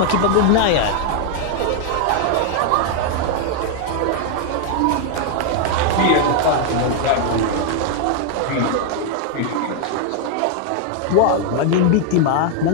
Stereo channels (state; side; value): different; both; correlation 0.00